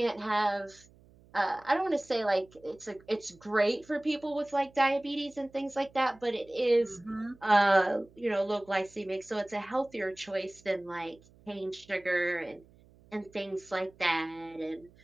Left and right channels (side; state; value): right; noise; hum, 27 dB below the sound